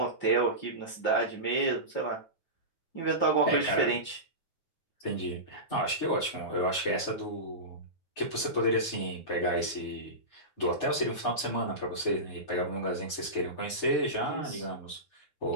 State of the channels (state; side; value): late; right; 9.3 ms